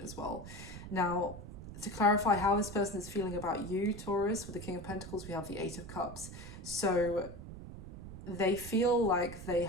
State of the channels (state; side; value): noise; right; rumble, 12 dB below the sound